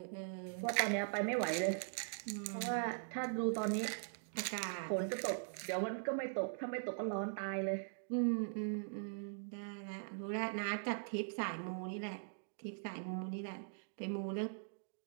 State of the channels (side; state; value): left; silent; digital silence